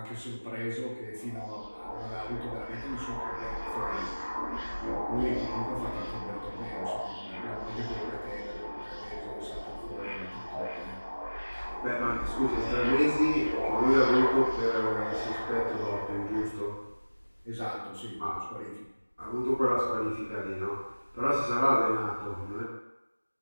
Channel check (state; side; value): inverted; both; correlation -1.00